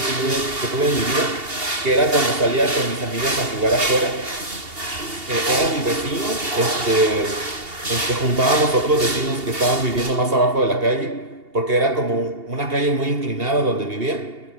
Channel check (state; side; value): late; left; 2.8 ms